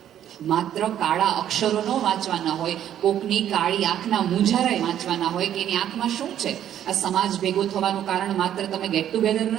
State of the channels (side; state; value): left; quieter; 10.7 dB